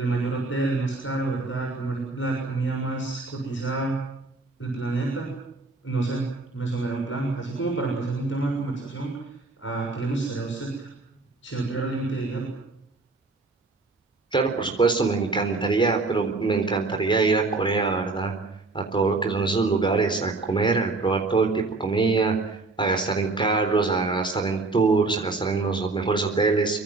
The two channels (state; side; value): quieter; left; 3.5 dB